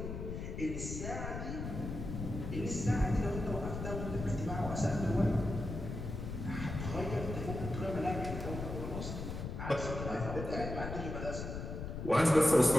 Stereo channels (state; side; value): noise; left; rumble, 6 dB below the sound